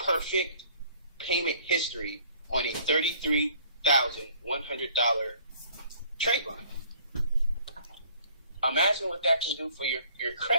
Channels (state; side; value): inverted; both; correlation -0.57